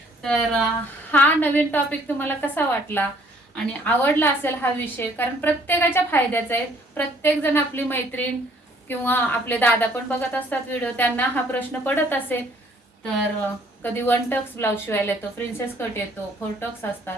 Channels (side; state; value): both; normal; correlation 0.60